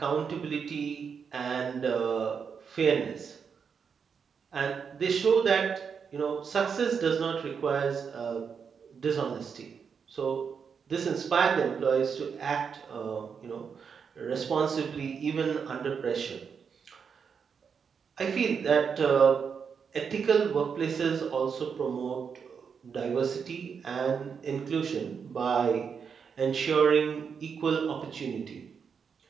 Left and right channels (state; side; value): quieter; left; 6.4 dB